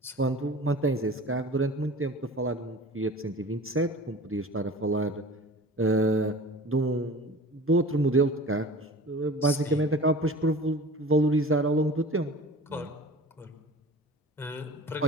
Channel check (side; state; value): both; normal; correlation 0.40